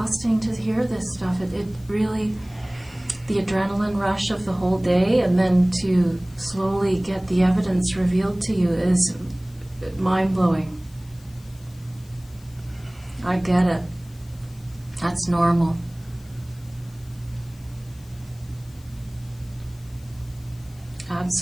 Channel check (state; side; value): noise; left; hiss, 26 dB below the sound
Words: to hear this stuff. It really, the adrenaline rush of the whole day and then to slowly get the evidence revealed to you is mind-blowing. I get it. That's normal.